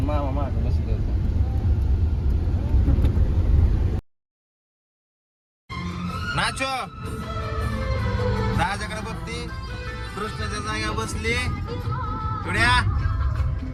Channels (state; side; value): identical; both; correlation 1.00